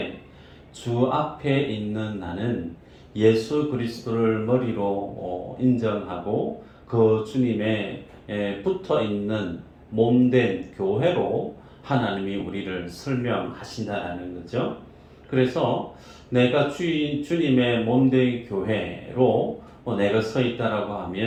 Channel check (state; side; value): identical; both; correlation 1.00